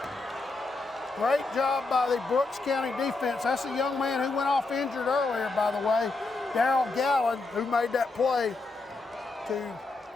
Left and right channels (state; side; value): quieter; right; 3.5 dB